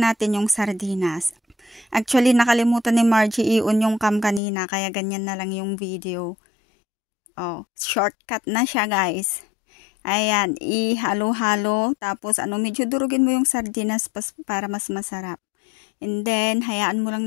yung sardinas. Actually, nakalimutan ni Margie i-on yung cam kanina, kaya ganyan na lang yung video. Oh, shortcut na siya, guys. Ayan, ihalo-halo, tapos medyo durugin mo yung sardinas para mas masarap. And then, hayaan mo lang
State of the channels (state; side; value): drops out; right; at 4.4 s